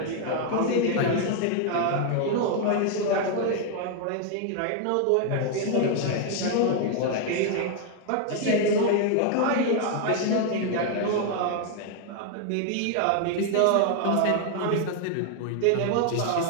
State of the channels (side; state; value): both; different; correlation 0.00